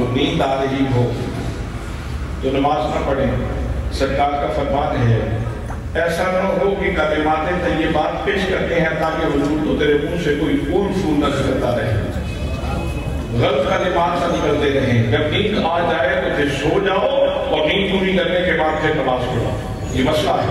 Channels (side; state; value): both; identical; correlation 1.00